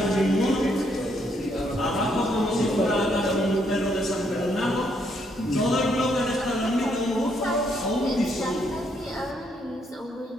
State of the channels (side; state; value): both; normal; correlation 0.73